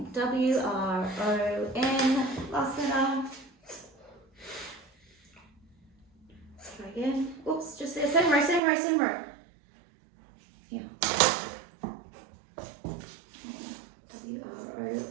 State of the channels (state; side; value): drops out; left; at 8.6 s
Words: W, R, O, N, last letter. Try again. Oops, just there. Same row. Yeah. W, R, O,